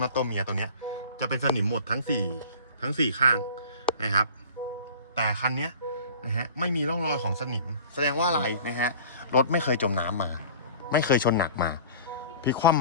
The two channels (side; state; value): both; inverted; correlation -0.43